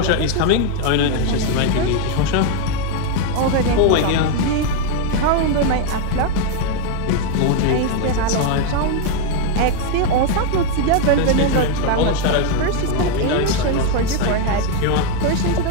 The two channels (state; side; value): different; both; correlation 0.01